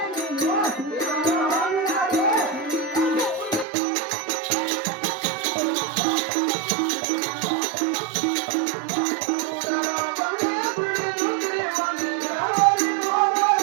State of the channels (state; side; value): drops out; left; at 3.7 s